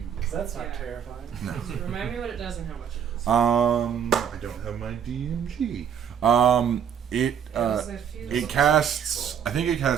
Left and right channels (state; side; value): quieter; left; 8.3 dB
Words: That's not terrifying. No. Remind me what it does and how much it is. I don't have my DMG. It casts. I think it